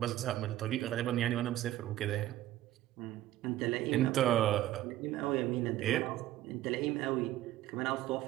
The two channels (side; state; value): left; quieter; 14.3 dB